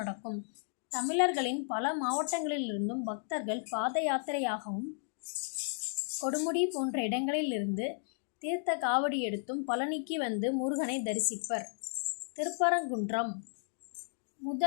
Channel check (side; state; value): right; silent; digital silence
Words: தமிழர்களின் பல மாவட்டங்களிலிருந்தும் பக்தர்கள் பாத யாத்திரையாகவும் கொடுமுடி போன்ற இடங்களிலிருந்து தீர்த்த காவடி எடுத்தும் பழனிக்கு வந்து முருகனை தரிசிப்பர். திருப்பரங்குன்றம்